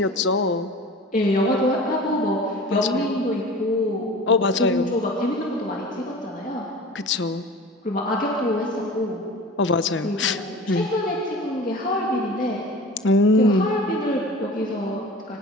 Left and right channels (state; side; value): normal; both; correlation 0.38